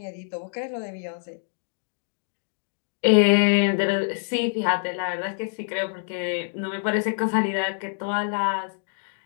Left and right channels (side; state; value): right; silent; digital silence